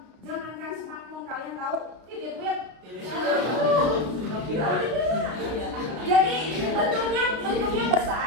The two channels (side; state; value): left; late; 33 ms